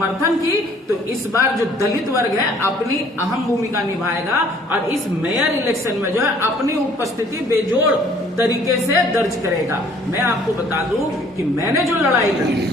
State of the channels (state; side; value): normal; both; correlation 0.58